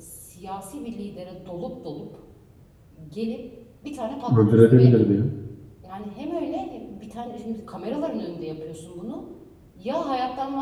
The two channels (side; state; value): both; identical; correlation 1.00